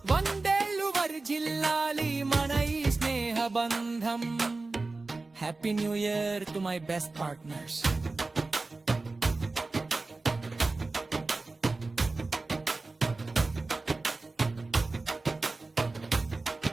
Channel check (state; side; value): quieter; left; 3.5 dB